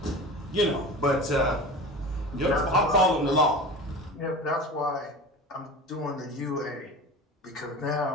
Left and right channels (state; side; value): normal; both; correlation 0.33